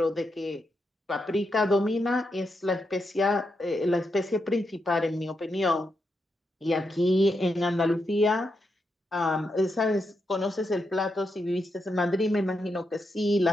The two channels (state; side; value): normal; both; correlation 0.84